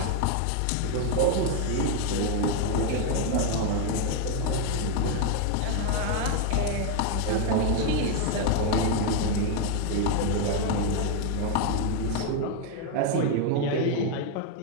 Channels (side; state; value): both; different; correlation 0.01